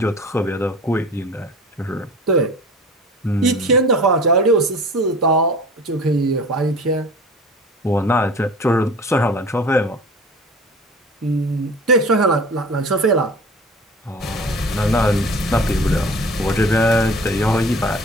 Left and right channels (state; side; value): normal; both; correlation 0.41